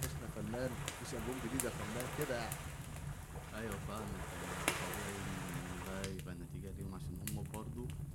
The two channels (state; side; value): identical; both; correlation 1.00